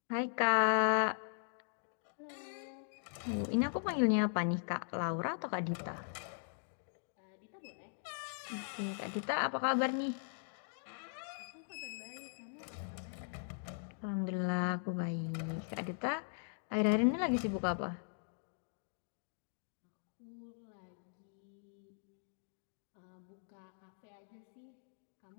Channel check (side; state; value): right; silent; digital silence